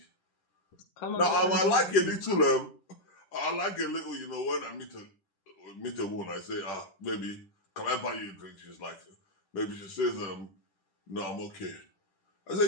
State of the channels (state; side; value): late; right; 10 ms